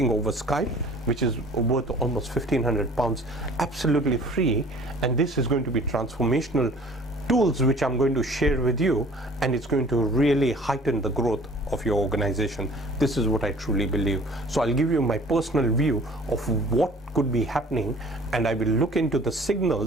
over Skype, which is worth almost £1,500, absolutely free, and this is going to be transformational tools which I'm going to share with you, and it's going to really heighten the growth of your organization. This is what I truly believe. So I'll give you my personal view of what could be happening, and I will look into the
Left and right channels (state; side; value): normal; both; correlation 0.50